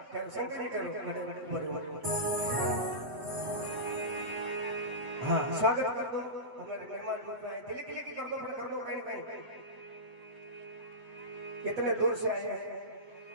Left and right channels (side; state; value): left; late; 7.8 ms